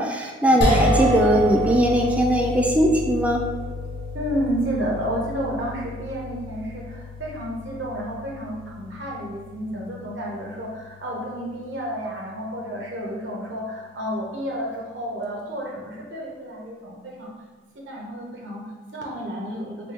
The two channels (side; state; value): both; normal; correlation 0.60